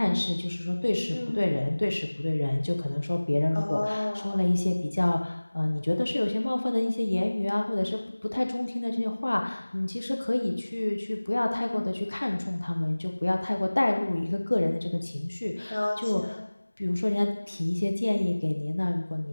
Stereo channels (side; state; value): both; inverted; correlation -1.00